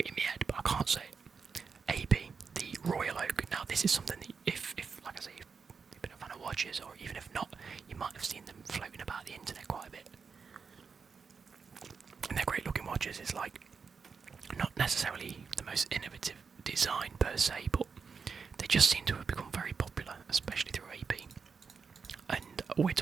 in my head, but I can't say it. AP, the Royal Oak. Now this is something that if like I say, you've been a fan of watches, or even if not, you might have seen them floating about the internet quite a bit. And they're great looking watches. It's like not necessarily the most innovative design per se, but they just seem to have become very popular, especially through AP. And we're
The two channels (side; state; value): left; quieter; 5.5 dB